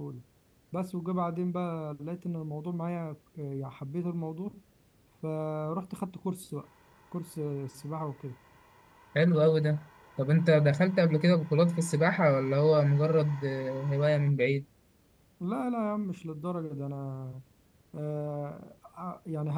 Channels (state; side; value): identical; both; correlation 1.00